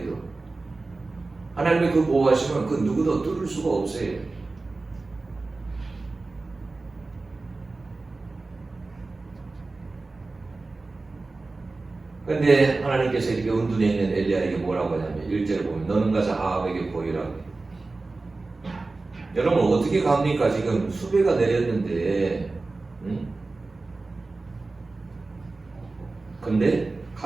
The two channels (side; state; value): left; quieter; 3.5 dB